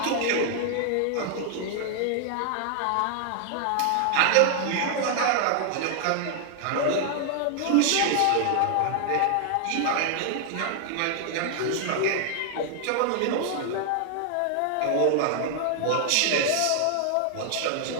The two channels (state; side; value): different; both; correlation 0.00